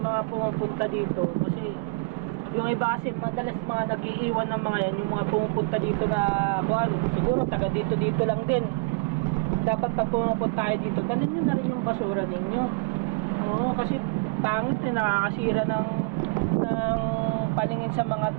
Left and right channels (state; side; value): quieter; left; 28.1 dB